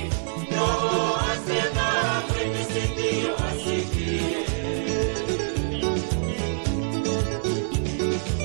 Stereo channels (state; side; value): silent; left; digital silence